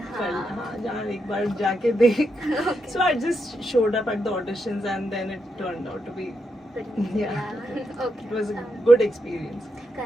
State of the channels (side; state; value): both; normal; correlation 0.83